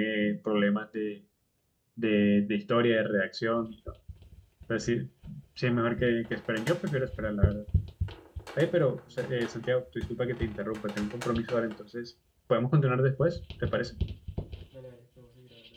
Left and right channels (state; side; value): identical; both; correlation 1.00